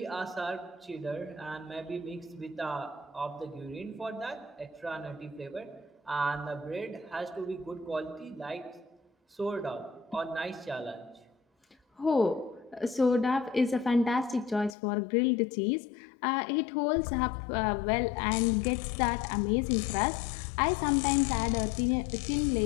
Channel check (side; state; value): right; drops out; at 14.8 s